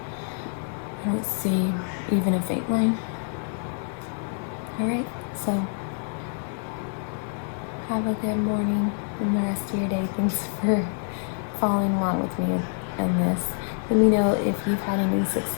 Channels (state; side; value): silent; right; 56 dB below the other